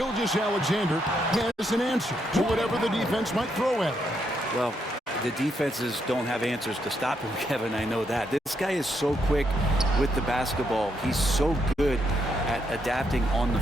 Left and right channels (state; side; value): normal; both; correlation 0.78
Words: has an answer to whatever the defense might throw at him. Well, the defenses don't have answers to stop him, Kevin. I know that. This guy is so quick with the basketball. He's so good at adapting on the